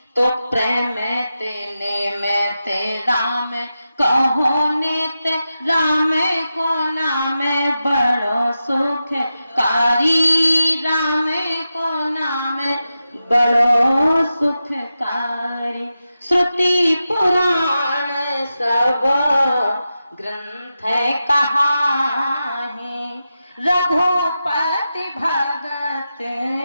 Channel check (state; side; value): inverted; both; correlation -0.91